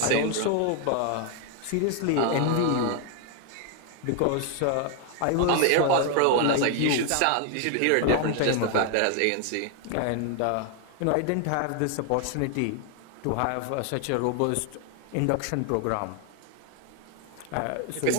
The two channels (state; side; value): different; both; correlation 0.00